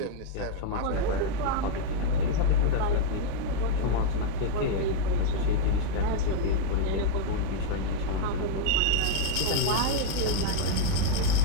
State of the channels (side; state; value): both; different; correlation 0.00